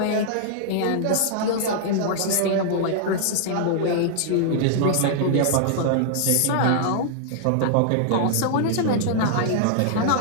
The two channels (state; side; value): different; both; correlation -0.01